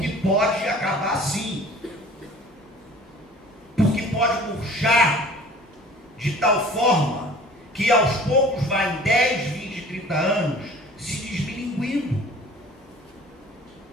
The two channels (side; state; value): both; normal; correlation 0.46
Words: pode acabar sim. Porque pode murchar de tal forma que aos poucos vai em 10, 20, 30 anos se desmilinguindo.